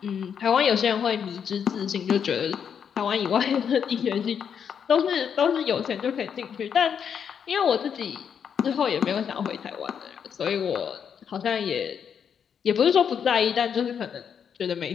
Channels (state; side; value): quieter; right; 7.6 dB